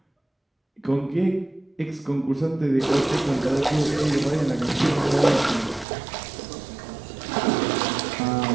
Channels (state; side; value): drops out; left; at 5.9 s